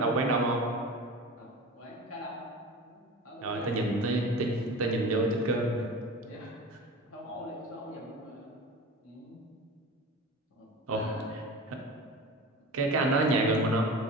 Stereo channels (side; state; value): both; normal; correlation 0.34